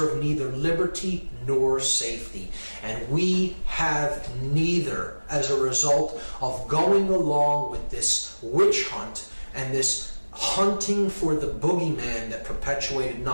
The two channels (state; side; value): inverted; both; correlation -1.00